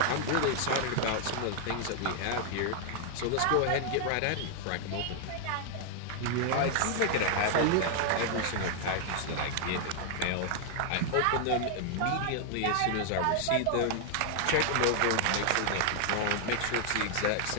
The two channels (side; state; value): both; different; correlation 0.00